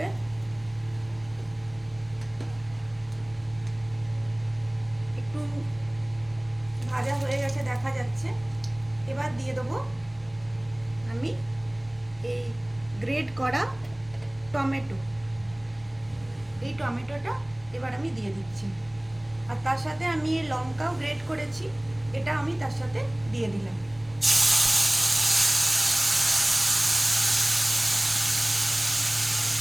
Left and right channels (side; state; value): left; noise; rumble, 28 dB below the sound